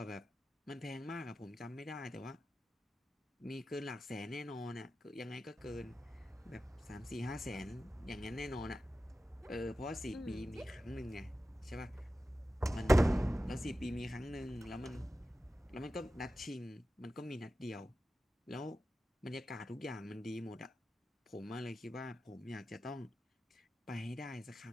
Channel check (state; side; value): normal; both; correlation 0.93